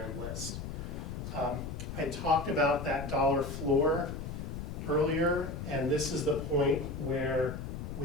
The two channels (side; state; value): left; noise; rumble, 6 dB below the sound